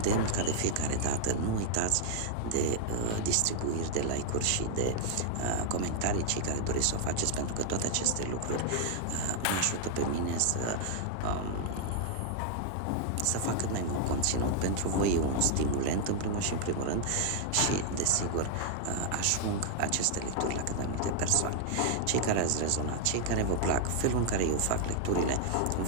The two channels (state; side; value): different; both; correlation 0.00